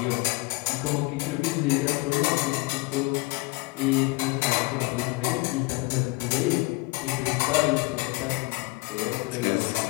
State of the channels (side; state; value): right; quieter; 23.9 dB